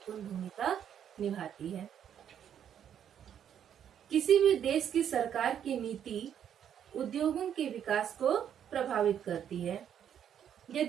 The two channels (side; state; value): left; quieter; 9.2 dB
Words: भूमिका निभाती है। किसी भी देश की सरकार की नीति उद्योगों के विकास को प्रभावित करती है।